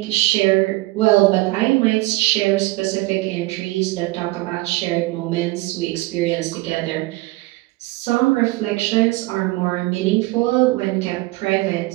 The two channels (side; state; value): left; quieter; 20.8 dB